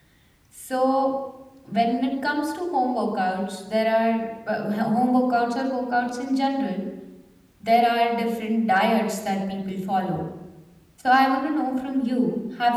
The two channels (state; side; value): identical; both; correlation 1.00